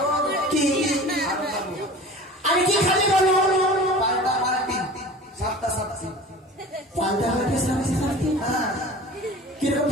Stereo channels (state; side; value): normal; both; correlation 0.39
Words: কি আরো খাবো। আর কি খাবে বলো? পাল্টা পাল্টি, সাতটা সাতটা পাল্টা হয়ে সামনে সামনে কিরকম